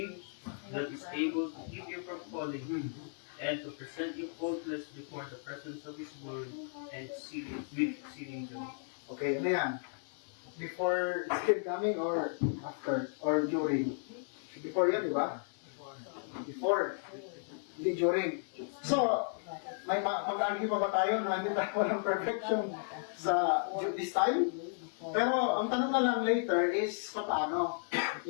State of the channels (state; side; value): silent; right; 55 dB below the other